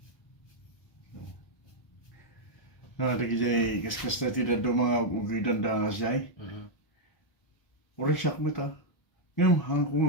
Lagi di, kaskas na tidak do mga ugidan dangas jay. Uri siyak mo ta. Ngayon, hang ko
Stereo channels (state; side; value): late; right; 1.1 ms